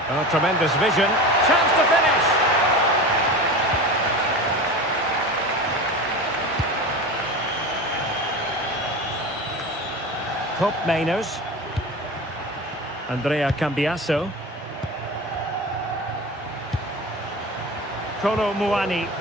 Oh, tremendous vision. Chance to finish. Cup Mainers. Andrea Cambiasso. Kolo Muani.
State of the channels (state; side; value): normal; both; correlation 0.30